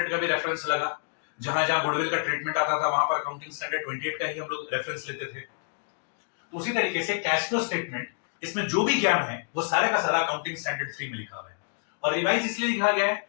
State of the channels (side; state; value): right; silent; digital silence